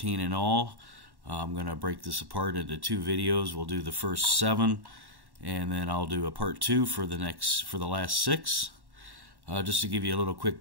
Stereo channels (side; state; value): left; late; 1.1 ms